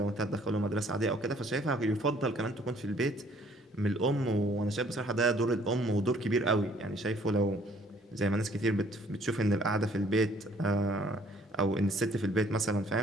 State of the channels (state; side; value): normal; both; correlation 0.60